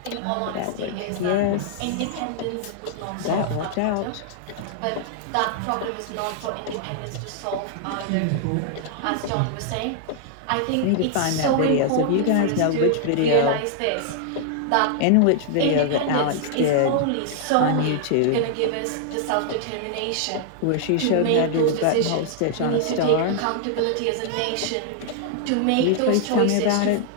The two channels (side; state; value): both; different; correlation -0.01